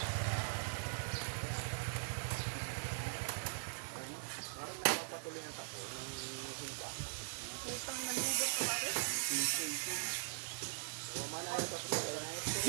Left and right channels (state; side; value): silent; left; digital silence